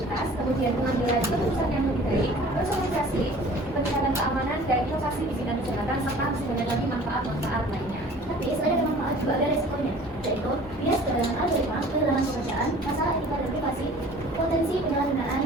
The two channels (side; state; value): both; normal; correlation 0.47